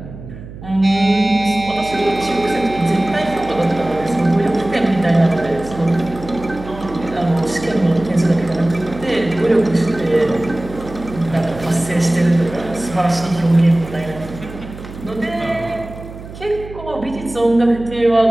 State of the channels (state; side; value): noise; right; hum, 14 dB below the sound